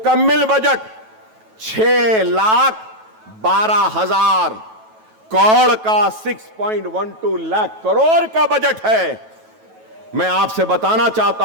बजट 6,12,000 करोड़ का 6.12 लाख करोड़ का बजट है। मैं आपसे बताना चाहता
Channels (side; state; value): left; late; 9.2 ms